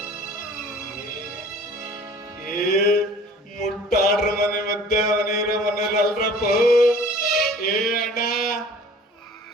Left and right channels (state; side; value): normal; both; correlation 0.48